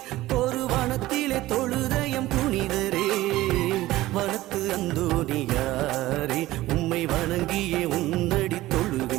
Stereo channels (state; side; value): quieter; left; 16.9 dB